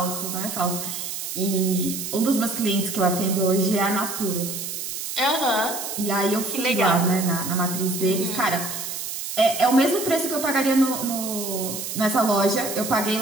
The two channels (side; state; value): right; noise; hiss, 6 dB below the sound